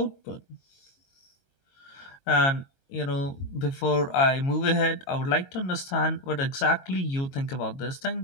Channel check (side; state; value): right; late; 22 ms